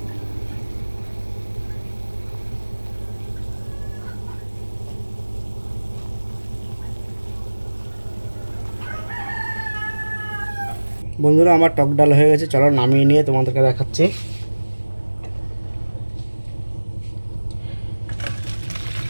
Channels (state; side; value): inverted; both; correlation -1.00